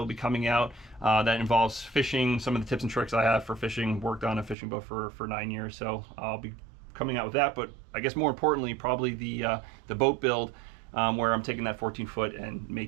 be coming out that involves fishing, some of the tips and tricks I have for fishing. Worked on a fishing boat for 9 years, so I'll be coming out with that. But I guess more importantly, probably the boat build, where I'm taking that 14-foot and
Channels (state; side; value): drops out; left; at 4.5 s